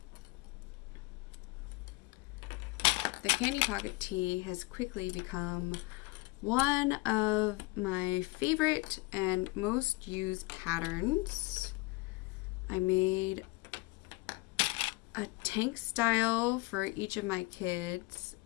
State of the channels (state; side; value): quieter; right; 23.5 dB